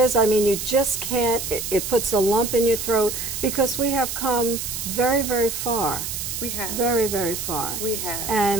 I mean, you just can't, it puts a lump in your throat, because we have come very, very far. We have. Very, very far. We have.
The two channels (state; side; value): noise; right; hiss, 5 dB below the sound